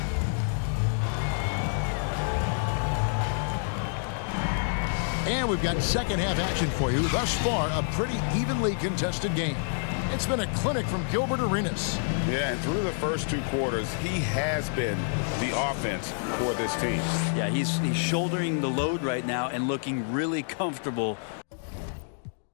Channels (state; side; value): silent; right; digital silence